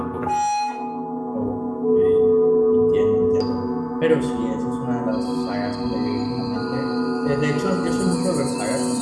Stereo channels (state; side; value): identical; both; correlation 1.00